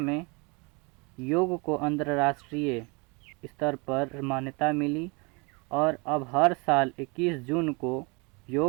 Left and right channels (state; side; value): quieter; left; 29.6 dB